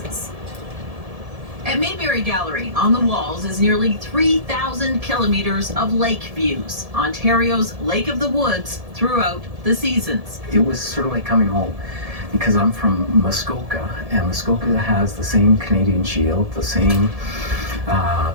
At Mayberry Gallery, on the walls is nearly 3,000 kilometers of lake views, Ontario's Lake of the Woods, throughout the seasons. It was sort of like coming home because I'm from Muskoka, and Muskoka has the same Canadian shield, the same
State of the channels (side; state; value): left; late; 1.7 ms